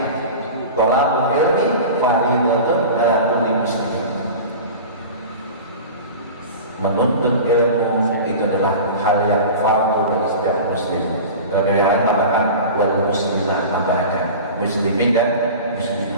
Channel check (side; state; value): both; inverted; correlation -0.34